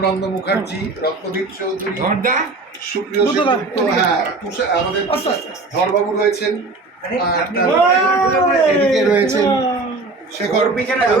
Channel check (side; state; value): left; quieter; 3.4 dB